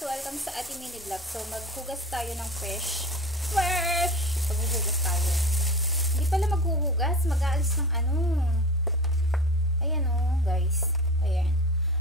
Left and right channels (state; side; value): normal; both; correlation 0.33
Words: Welcome sa ating mini vlog. So, maghugas tayo ng fish. Fresh! Maghuhugas tayo. Hindi pala maghuhugas. Mag-aalis ng ano. Ayan o, guys. Ayan.